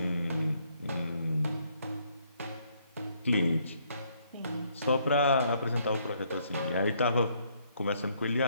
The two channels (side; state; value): both; inverted; correlation -0.69